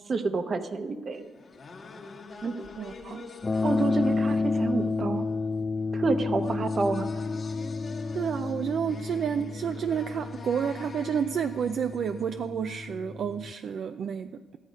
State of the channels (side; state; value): both; normal; correlation 0.83